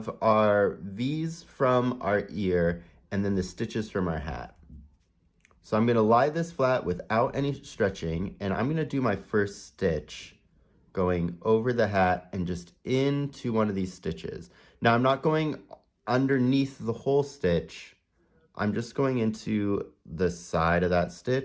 our V's from our ear and then the stitches from our hat. So I'm gonna lie this flat without any stretching, and I'm gonna do my first stitch going over the hat and just into one of these stitches. Now I'm not going underneath the whole stitch, I'm just going into the side of that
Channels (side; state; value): both; identical; correlation 1.00